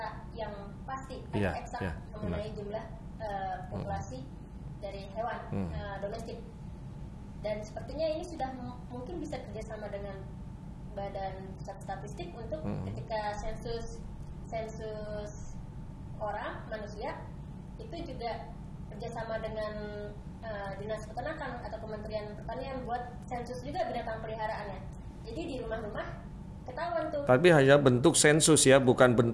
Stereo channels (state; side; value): identical; both; correlation 1.00